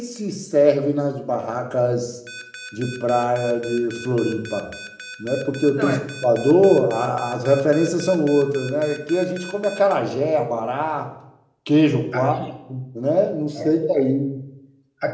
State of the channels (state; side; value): identical; both; correlation 1.00